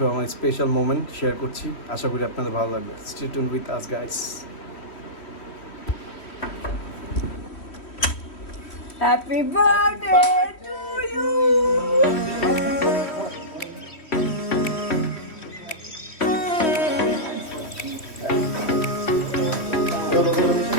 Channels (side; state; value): right; late; 3.1 ms